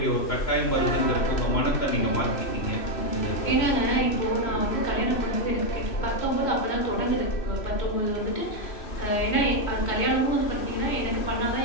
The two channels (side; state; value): right; late; 3.0 ms